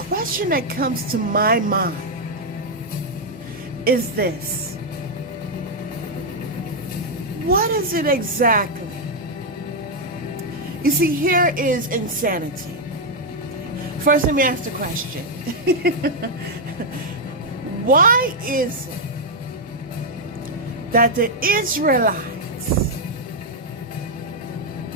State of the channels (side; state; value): both; normal; correlation -0.01